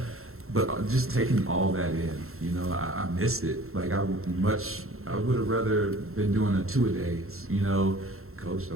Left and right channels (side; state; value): left; late; 0.62 ms